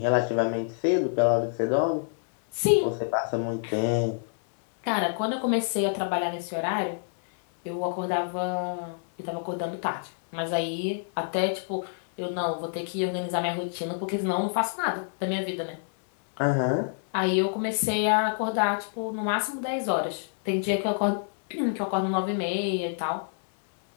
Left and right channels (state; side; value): silent; right; 60 dB below the other